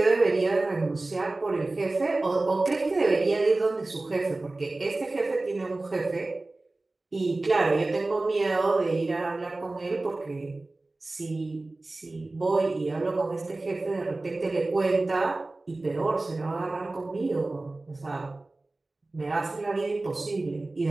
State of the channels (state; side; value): quieter; left; 3.0 dB